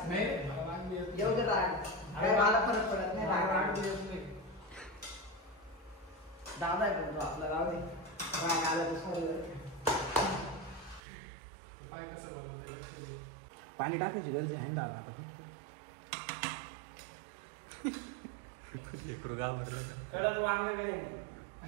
नाही, मला राग येत नाही. येऊ दे राग. काय मला फरक पडत नाही. राग येत नाही. दादा आहे पण तो आपला, राव दे. राग आला तर सॉरी. पाय कसं बनवते? पाणी टाकायची गरज आहे दादा आता. कळलं तू आम्ही काय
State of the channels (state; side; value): drops out; left; at 11.0 s